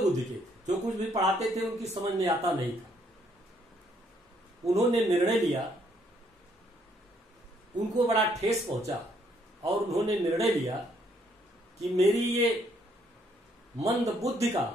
के थे। जो कुछ भी पढ़ाते थे उनकी समझ में आता नहीं था। उन्होंने निर्णय लिया, उनको बड़ा ठेस पहुंचा और उन्होंने निर्णय लिया कि मेरी ये मंद बुद्धि का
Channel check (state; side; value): normal; both; correlation 0.69